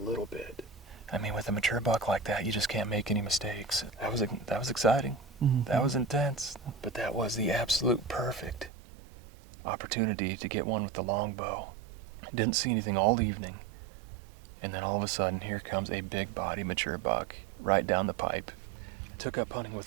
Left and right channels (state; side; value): drops out; left; at 8.7 s